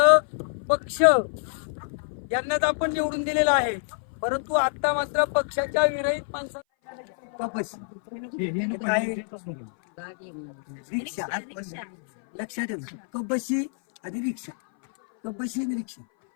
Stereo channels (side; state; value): right; silent; 58 dB below the other